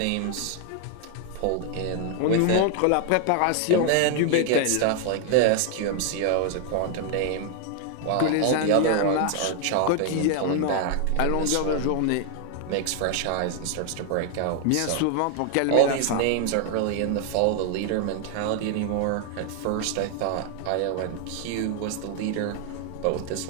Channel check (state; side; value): different; both; correlation 0.00